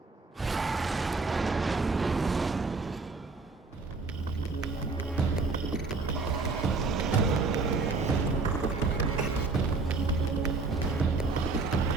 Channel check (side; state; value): left; quieter; 4.0 dB